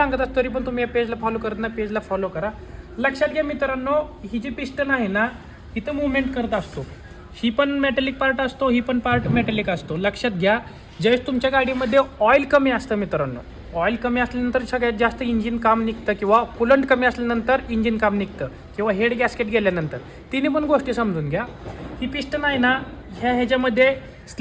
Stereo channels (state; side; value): identical; both; correlation 1.00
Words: असतो तरी पण तुम्ही या पेजला फॉलो करत ना, पेजला फॉलो करा. लक्षात घ्या मित्रांनो, ही जी पिस्टन आहे ना, इथं मुवमेंट करत असतो. ही पण मेटॅलिक पार्ट असतो, ही पण पार्ट मेटॅलिक असतो. लक्षात घ्या, ज्यावेळेस तुमच्या गाडीमध्ये ऑइल कमी असतं मित्रांनो, ऑइल कमी असल्यानंतर सगळ्यात जास्त इंजिन काम निघतं किंवा कुलंट कमी असल्यानंतर इंजिन काम निघतं किंवा हेड गॅस्केट गेल्यानंतर. तिन्ही पण गोष्टी समजून घ्या. ही पिस्टन आहे ना, ह्याच्यामध्ये